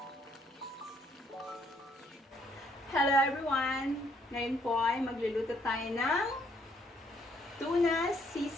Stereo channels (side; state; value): both; normal; correlation 0.68